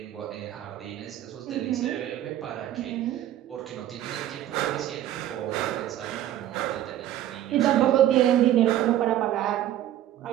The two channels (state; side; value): quieter; left; 12.4 dB